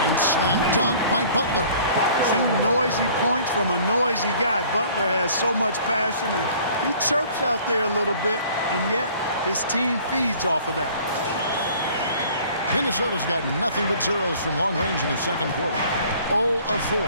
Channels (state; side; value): inverted; both; correlation -0.52